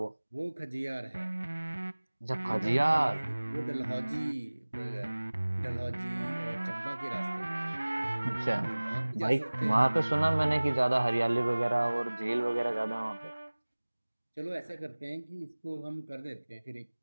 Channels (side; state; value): both; inverted; correlation -1.00